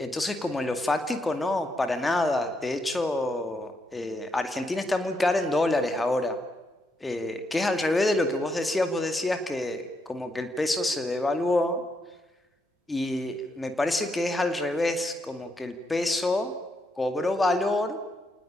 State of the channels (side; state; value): both; normal; correlation 0.79